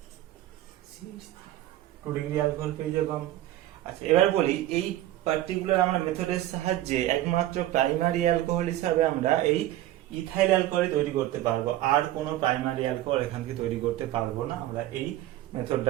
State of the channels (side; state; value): left; quieter; 14.6 dB